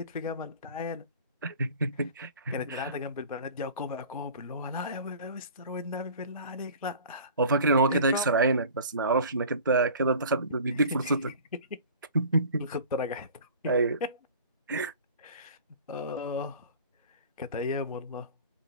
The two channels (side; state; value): both; inverted; correlation -0.43